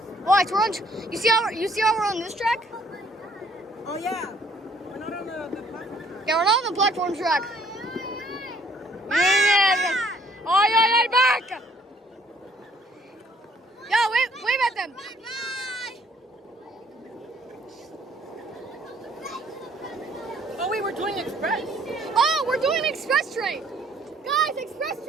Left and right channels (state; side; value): normal; both; correlation 0.62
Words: Watch, we're on. You see how we're on this track? Oh, yeah. We're not on the platform. Yeah, we're not on the platform track. Ay, back! Yo, wave at them. Oh, wait, we're doing express. Oh, we're doing express train. Guys, express